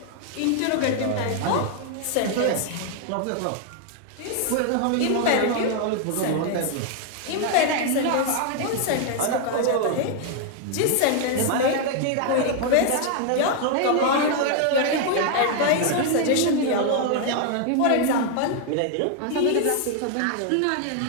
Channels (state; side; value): different; both; correlation 0.00